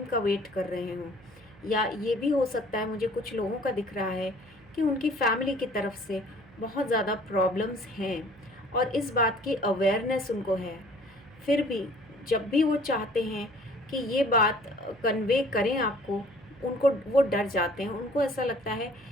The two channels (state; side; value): noise; right; hum, 25 dB below the sound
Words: का वेट कर रहे हों, या ये भी हो सकता है, मुझे कुछ लोगों का दिख रहा है कि उनकी फैमिली की तरफ से बहुत ज़्यादा प्रॉब्लम्स हैं और इस बात की अवेयरनेस उनको है। फिर भी जब भी वो चाहते हैं कि ये बात कन्वे करें आपको, उनको वो डर जाते हैं, उनको ऐसा लगता है